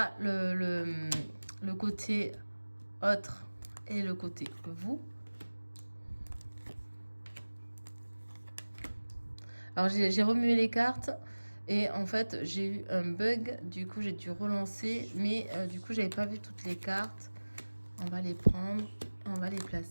le côté autre et le côté vous. Alors, j'ai remué les cartes et en fait, j'ai eu un bug. Du coup, j'ai dû relancer. Mais du coup, j'avais pas vu toutes les cartes. On va les prendre. On va les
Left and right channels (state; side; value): inverted; both; correlation -1.00